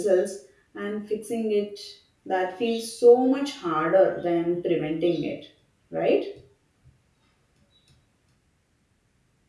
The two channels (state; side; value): identical; both; correlation 1.00